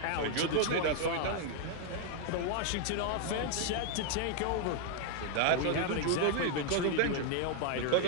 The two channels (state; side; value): different; both; correlation 0.00